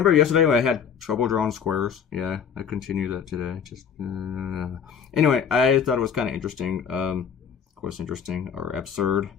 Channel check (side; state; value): right; quieter; 7.3 dB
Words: yesterday when I had trouble drawing squares? Yeah, I continue that today. Anyway, I thought it was kind of interesting. Of course, interesting or absurd.